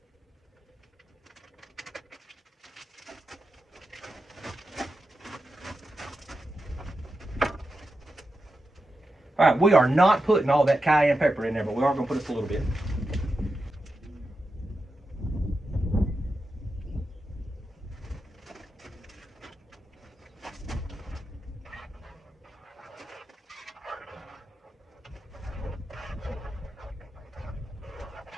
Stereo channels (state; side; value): normal; both; correlation 0.89